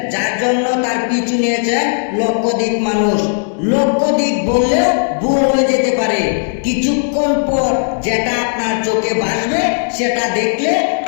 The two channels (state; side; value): silent; right; 69 dB below the other